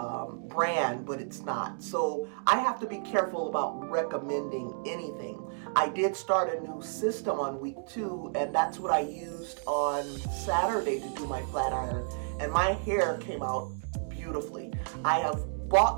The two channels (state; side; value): silent; left; digital silence